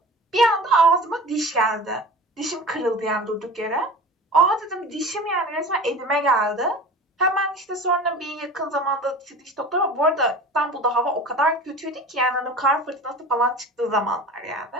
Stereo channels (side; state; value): both; normal; correlation 0.37